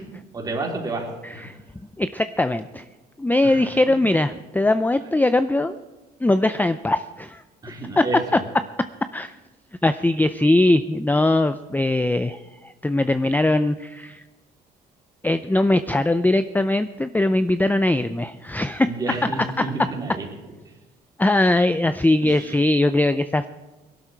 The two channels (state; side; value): normal; both; correlation 0.89